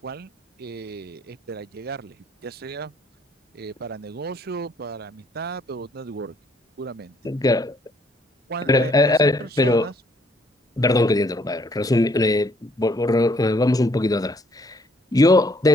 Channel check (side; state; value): both; normal; correlation 0.66